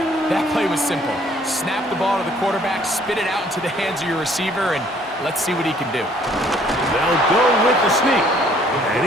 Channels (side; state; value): both; normal; correlation 0.60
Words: That play was simple. Snap the ball to the quarterback, spit it out into the hands of your receiver, and let's see what he can do. They'll go with the sneak. And